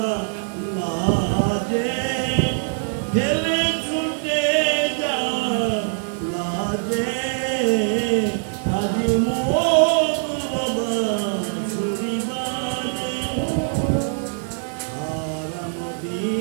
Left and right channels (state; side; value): silent; left; 64 dB below the other